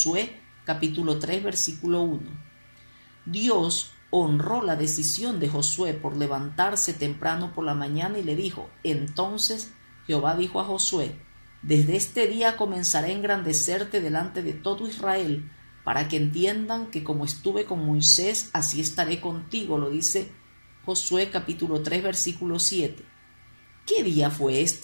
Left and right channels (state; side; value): inverted; both; correlation -1.00